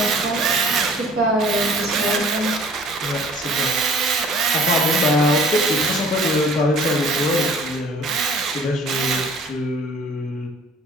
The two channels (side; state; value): both; normal; correlation 0.52